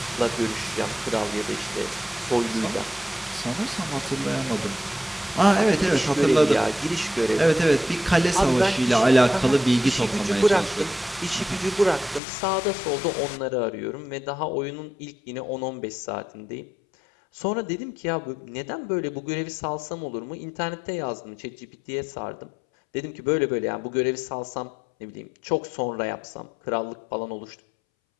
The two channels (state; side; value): drops out; right; at 12.2 s